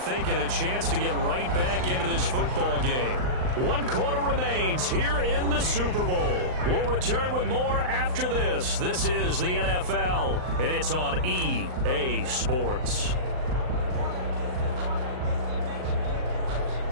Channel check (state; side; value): late; left; 39 ms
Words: a chance to get right back into this football game. 1 quarter remains here in the Super Bowl. We'll return with more after this. This is the NFL, and it's on EA Sports.